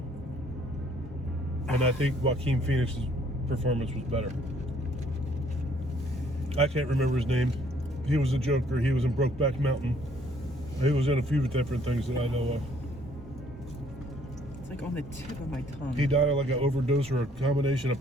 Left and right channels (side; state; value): both; normal; correlation 0.63